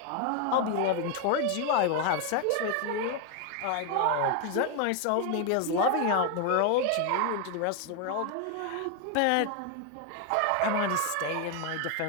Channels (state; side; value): different; both; correlation 0.01